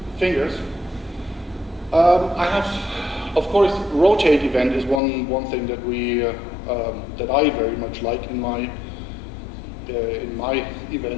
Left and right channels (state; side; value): drops out; right; at 5.0 s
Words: fingers. I have, of course, rotate event is one thing that that I very much like in my